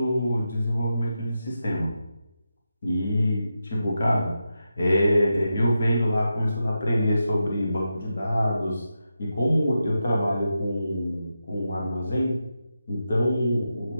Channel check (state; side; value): inverted; both; correlation -0.89